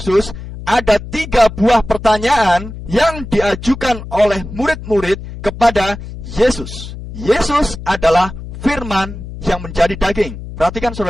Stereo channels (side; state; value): left; noise; hum, 11 dB below the sound